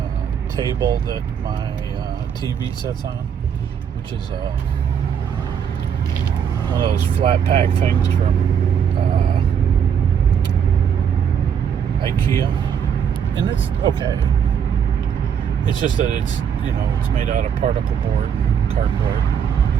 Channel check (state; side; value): quieter; left; 7.9 dB